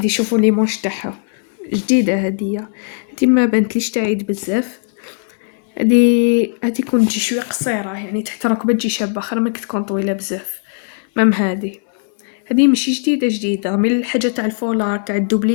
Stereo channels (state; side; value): silent; right; digital silence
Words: شوفوا لي مونش تاعها جديده, هذه ما بانتليش تعيد بزاف. هذه كون تجي شويه قصيره, يعني تحت الركبه تجي شابه خير من تكون طويله بزاف. مام هذه ماشي جديده من الحاجه تاع الفولار تاع